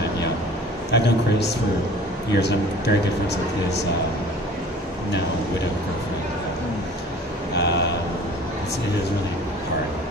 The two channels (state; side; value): normal; both; correlation 0.46